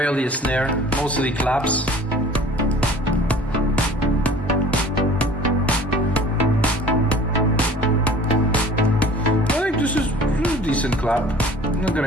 a snare, mostly claps. I think this is a decent clap. I'm not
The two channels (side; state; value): both; normal; correlation 0.47